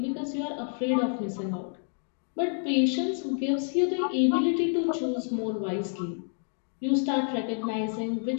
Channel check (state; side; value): silent; right; 59 dB below the other